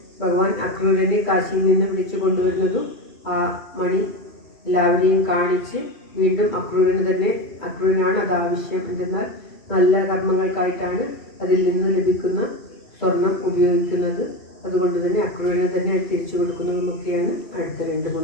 ഭഗവാൻ അക്രൂരനെ കാശിയിൽ നിന്ന് വിളിച്ചു കൊണ്ടുവരുന്നതും ആ മണി എല്ലാവരെയും കാണിച്ച് വീണ്ടും അക്രൂരനാണ് അത് ആവശ്യം. എന്തെന്നാൽ നല്ല കർമ്മങ്ങൾക്കായിട്ടാണ് അതിൽ നിന്ന് ലഭിക്കുന്ന സ്വർണം ഉപയോഗിക്കുന്നത്. അതുകൊണ്ട് തന്നെ അക്രൂരനെ തന്നെ തിരിച്ചു കൊടുക്കുന്നതുമൊക്കെയാണ് അടുത്ത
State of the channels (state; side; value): late; right; 2.3 ms